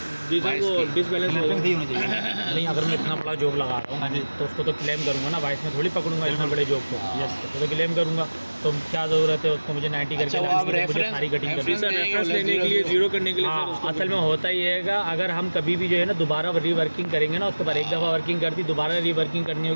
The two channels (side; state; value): both; inverted; correlation -1.00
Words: डिस वो डिसबैलेंस हो नहीं, अगर मैं इतना बड़ा जॉब लगा रहा हूँ तो उसको तो क्लेम करूँगा ना, वाइस में थोड़ी पकड़ूंगा इतना बड़े जॉब को। तो क्लेम करूँगा, तो क्या ज़रूरत है उसको मुझे 90 करके अच्छा, वो लगाने आप की, मुझे रेफरेंस सारी कटिंग करनी है। रेफरेंस लेने के लिए, जीरो करने के लिए सर हाँ, उसको असल में होता ही है, अगर हम कभी भी जो है ना दोबारा रीवर्किंग करेंगे ना, उसके बाद एक दफ़ा वर्किंग कर दी, दोबारा रीवर्किंग करनी